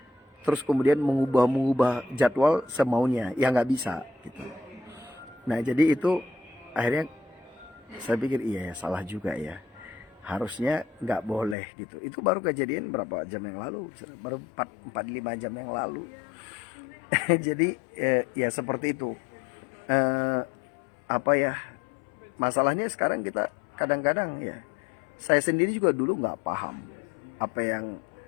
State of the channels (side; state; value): right; drops out; at 11.6 s